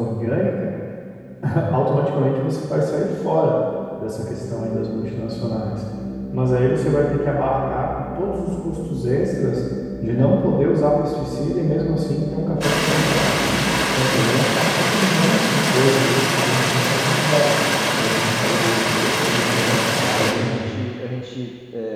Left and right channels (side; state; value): both; identical; correlation 1.00